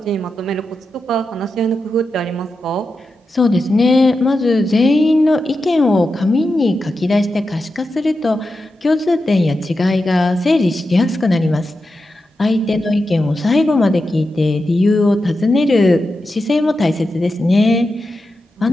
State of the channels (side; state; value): both; normal; correlation 0.89